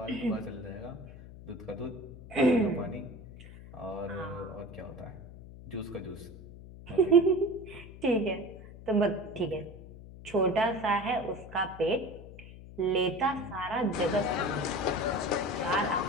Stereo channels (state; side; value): noise; left; hum, 16 dB below the sound